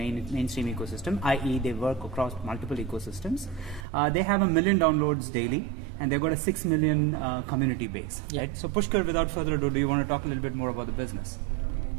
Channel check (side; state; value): left; drops out; at 3.9 s